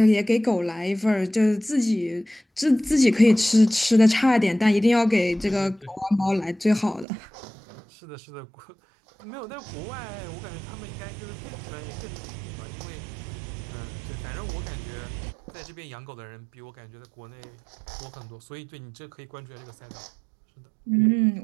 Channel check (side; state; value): left; drops out; at 7.1 s